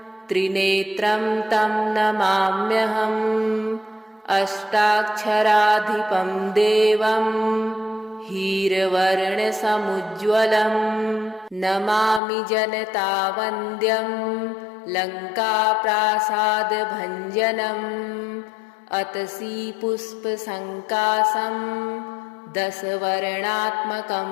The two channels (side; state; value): right; drops out; at 12.2 s